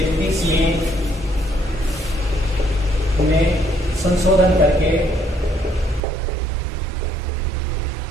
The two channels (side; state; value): left; drops out; at 6.0 s